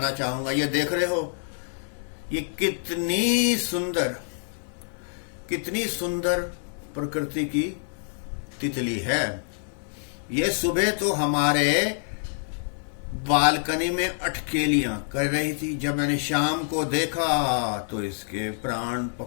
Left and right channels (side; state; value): right; silent; 59 dB below the other